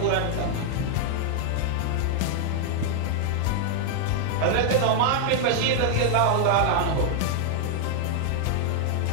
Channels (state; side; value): different; both; correlation 0.00